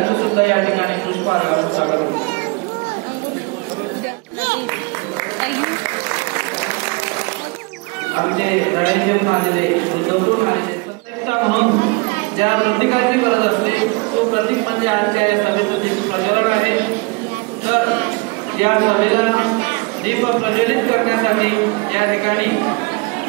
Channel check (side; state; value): left; quieter; 28.3 dB